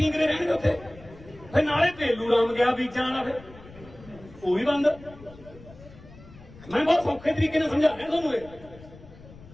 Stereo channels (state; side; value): noise; left; rumble, 20 dB below the sound